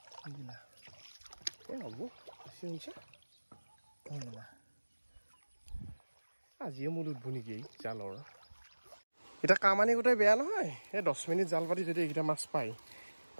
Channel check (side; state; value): both; inverted; correlation -1.00